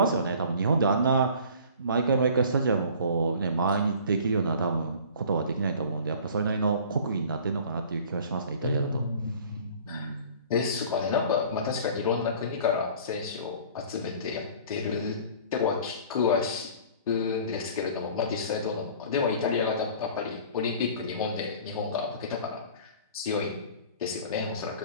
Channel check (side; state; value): both; inverted; correlation -0.46